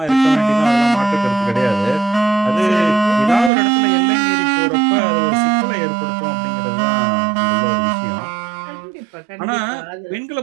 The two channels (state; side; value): drops out; left; at 3.5 s